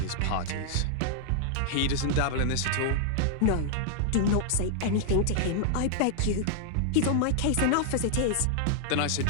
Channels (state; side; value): different; both; correlation -0.01